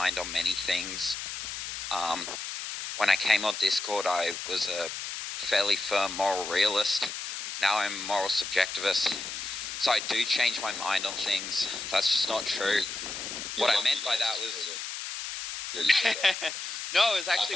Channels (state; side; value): noise; left; hiss, 6 dB below the sound